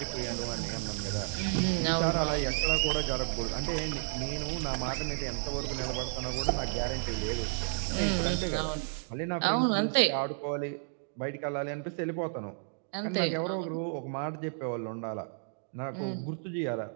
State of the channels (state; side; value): silent; left; digital silence